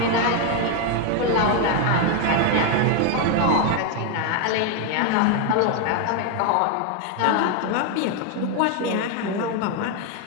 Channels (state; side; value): different; both; correlation 0.01